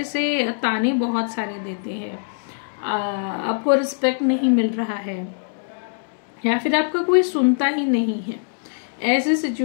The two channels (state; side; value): silent; right; digital silence